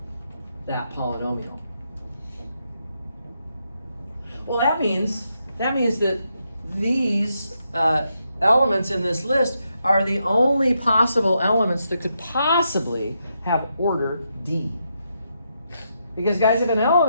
that polynomial. Well, that means that these elements in this list are the only possible elements that could possibly have order D. Because guys, if an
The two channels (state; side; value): inverted; both; correlation -0.81